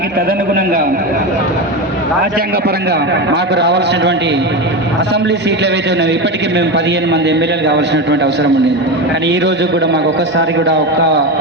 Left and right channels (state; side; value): normal; both; correlation 0.19